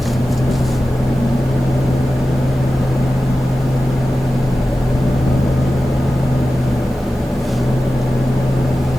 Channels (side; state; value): both; normal; correlation 0.94